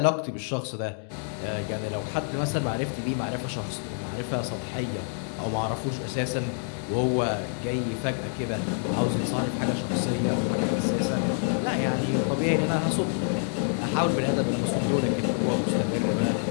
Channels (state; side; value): silent; right; 60 dB below the other